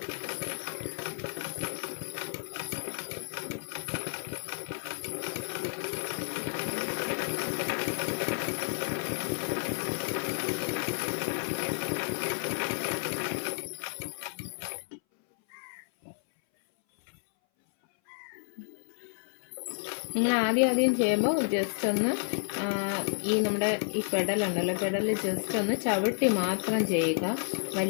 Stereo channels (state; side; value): silent; right; 57 dB below the other